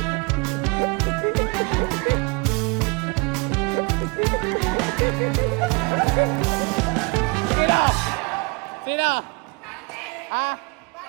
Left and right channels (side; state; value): left; quieter; 30.2 dB